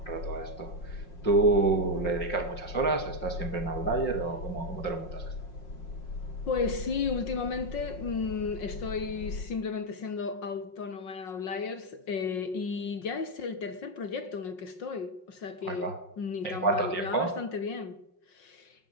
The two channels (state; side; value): late; right; 5.5 ms